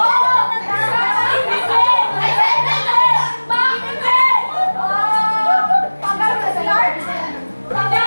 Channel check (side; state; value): both; inverted; correlation -1.00